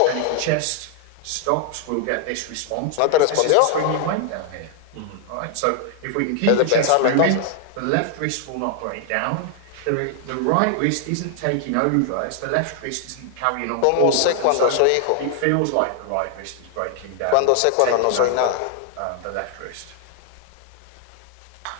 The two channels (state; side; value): different; both; correlation 0.00